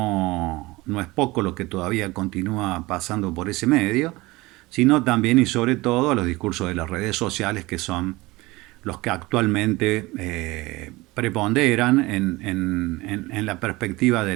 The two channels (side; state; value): left; quieter; 21.2 dB